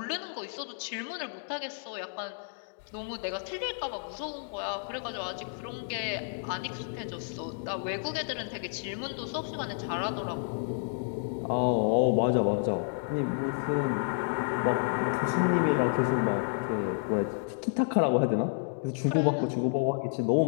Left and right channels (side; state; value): right; silent; digital silence